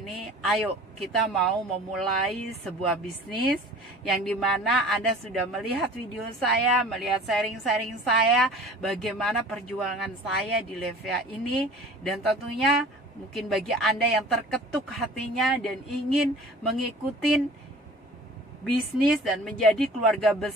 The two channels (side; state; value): both; normal; correlation 0.44